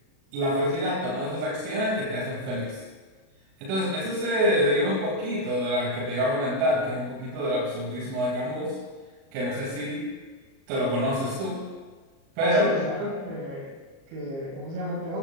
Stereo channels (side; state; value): left; late; 37 ms